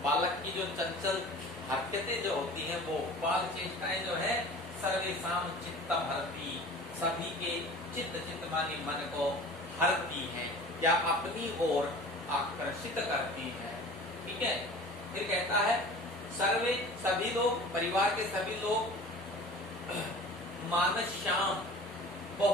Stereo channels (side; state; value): both; normal; correlation 0.41